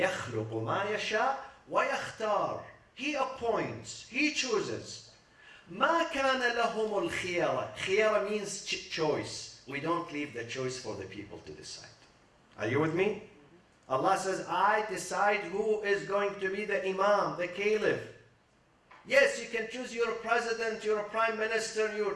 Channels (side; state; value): both; identical; correlation 1.00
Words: مَا يَشَاءُ وَيَخْتَارُ, he appoints, he chooses. مَا كَانَ لَهُمُ الْخِيَرَةِ, khiyara means choice. We don't leave the choice for the people to decide. Are you with me? Allah says, I decide who is going to be the imam, the caliph. Yes, you can choose your president, your prime minister,